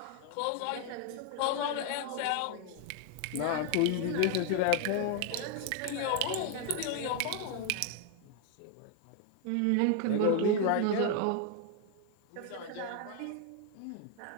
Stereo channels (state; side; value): different; both; correlation 0.01